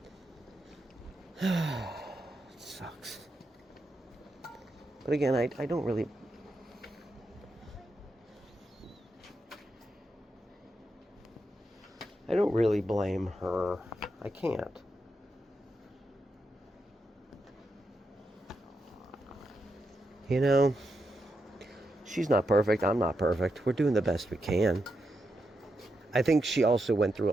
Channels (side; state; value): both; normal; correlation 0.85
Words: it sucks. But again, I don't really blame her. I can't. You know, she's not perfect. I'm not perfect. We're doing the best we can. I think she also went